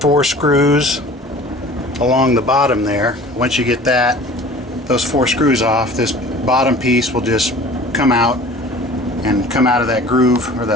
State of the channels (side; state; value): both; normal; correlation 0.45